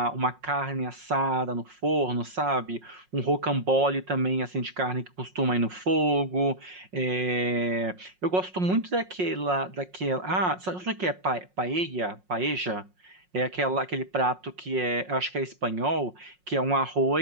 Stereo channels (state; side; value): late; left; 5.5 ms